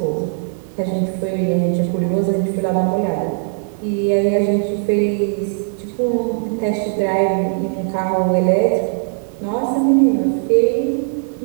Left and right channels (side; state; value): left; silent; 65 dB below the other